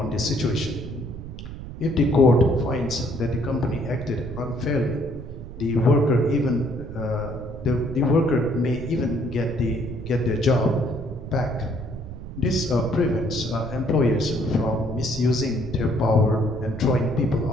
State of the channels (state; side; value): noise; right; rumble, 11 dB below the sound